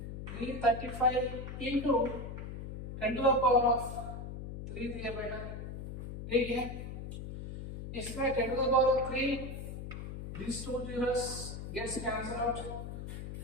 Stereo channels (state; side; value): noise; left; hum, 8 dB below the sound